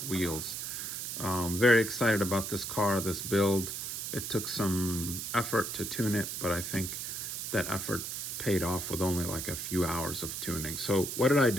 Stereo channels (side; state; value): right; noise; hiss, 5 dB below the sound